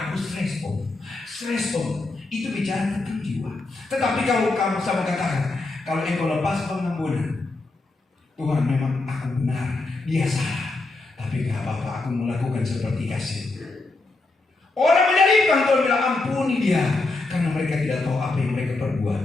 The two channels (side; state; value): right; quieter; 3.3 dB